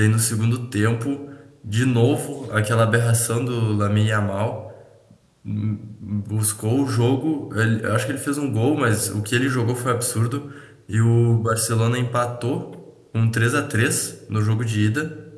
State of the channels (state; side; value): identical; both; correlation 1.00